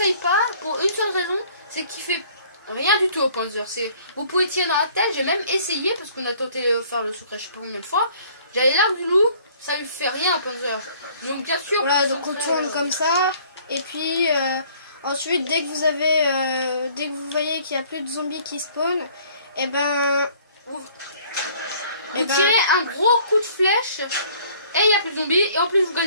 pas pour une seule raison, c'est qu'il fait rien du tout au panzer. Vous pouvez tirer dans la tête, j'ai même essayé parce qu'on a tenté de faire le secret je sais pas combien de fois. J'avais l'arc du loup, ça lui fait rien au panzer. Donc bien sûr. Voilà, donc on tourne comme ça. Et puis ensuite, dès que vous voyez qu'il n'y a plus de zombies qui spawnent, et ben vous tirez un gros coup de flèche et il n'y a plus de zombies et en plus vous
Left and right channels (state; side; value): inverted; both; correlation -0.56